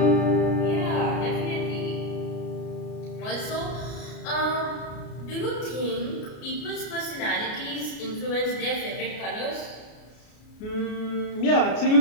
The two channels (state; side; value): late; right; 33 ms